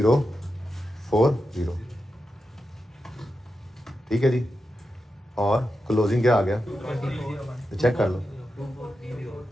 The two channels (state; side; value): normal; both; correlation 0.89